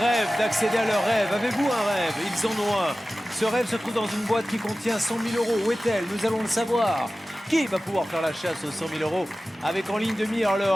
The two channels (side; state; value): both; normal; correlation 0.96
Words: d'accéder à leur rêve. Avez-vous un rêve? Ils en ont un. Ce rêve se trouve dans une boîte qui contient 100 000 €. Où est-elle? Nous allons le savoir. Qui va pouvoir faire la chasse aux 100 000 € avec en ligne de mire le